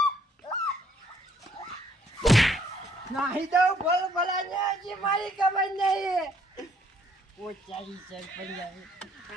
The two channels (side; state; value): both; normal; correlation 0.66